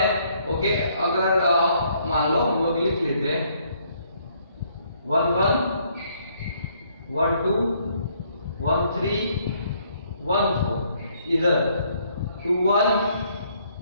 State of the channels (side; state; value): both; inverted; correlation -0.68